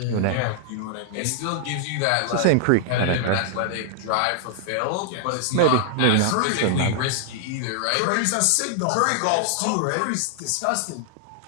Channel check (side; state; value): both; different; correlation 0.00